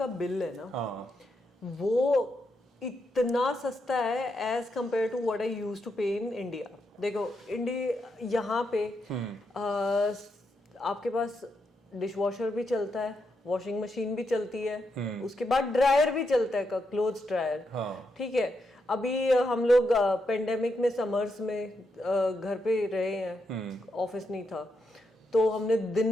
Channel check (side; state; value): both; normal; correlation 0.82